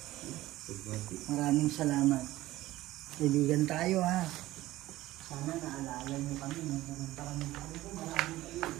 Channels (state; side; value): quieter; left; 16.5 dB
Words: Maraming salamat. Kaibigan tayo ha. Sana naalala nyo kami. Nung pumunta kami dito, maraming kayo.